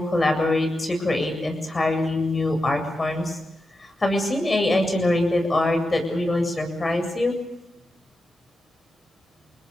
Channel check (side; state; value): both; normal; correlation 0.89